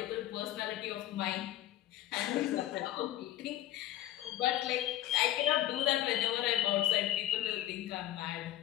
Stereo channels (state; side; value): quieter; right; 13.8 dB